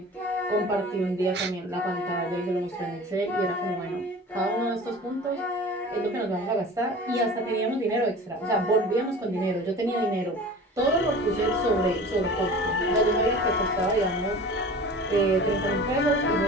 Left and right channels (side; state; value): both; normal; correlation 0.39